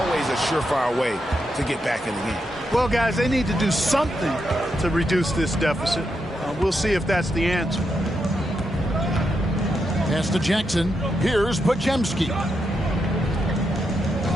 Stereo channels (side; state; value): both; normal; correlation 0.83